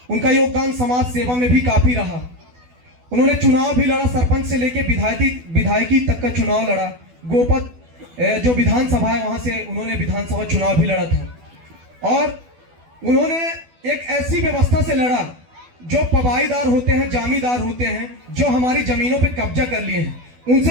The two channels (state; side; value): late; left; 12 ms